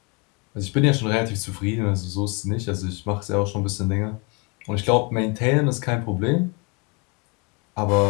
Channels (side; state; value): right; quieter; 30.2 dB